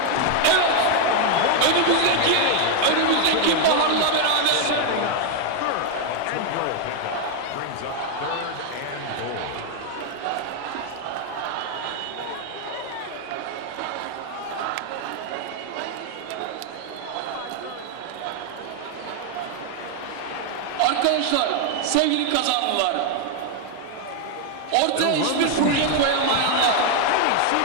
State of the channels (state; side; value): different; both; correlation 0.00